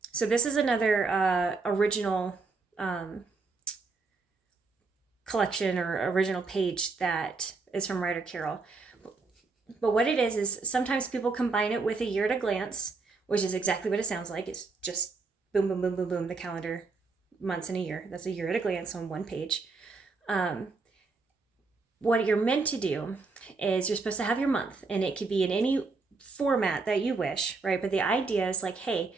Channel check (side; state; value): left; quieter; 4.1 dB